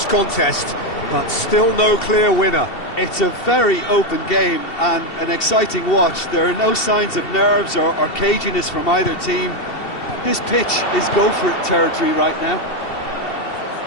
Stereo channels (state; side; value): late; right; 2.7 ms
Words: contest, but still no clear winner. It's a very open game and an exciting watch. There are no signs of nerves or caginess from either team. This pitch is go-for-it territory right now.